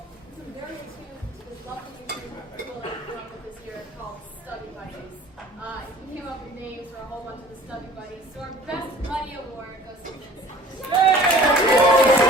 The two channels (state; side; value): normal; both; correlation 0.48